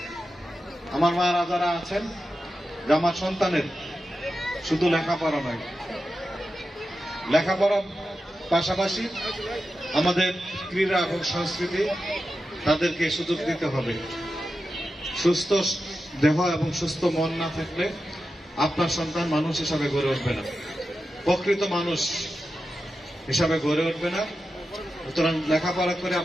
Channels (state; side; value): normal; both; correlation 0.91